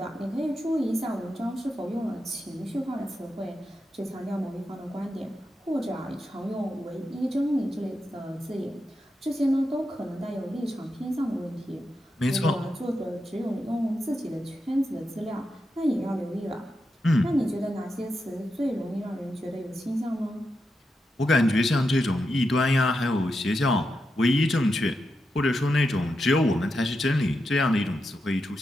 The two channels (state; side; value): normal; both; correlation 0.87